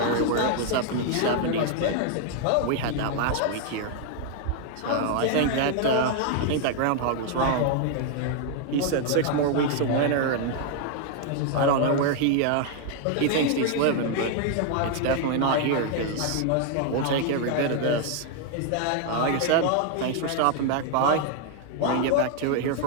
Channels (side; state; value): both; different; correlation 0.00